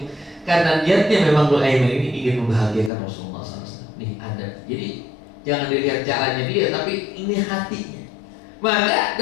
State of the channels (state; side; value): drops out; right; at 2.9 s